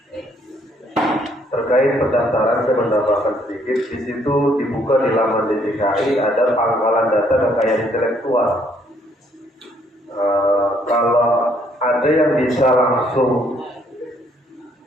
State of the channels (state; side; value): normal; both; correlation 0.67